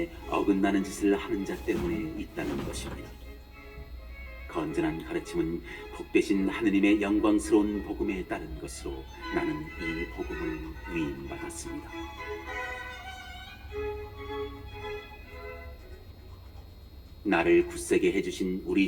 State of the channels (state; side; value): identical; both; correlation 1.00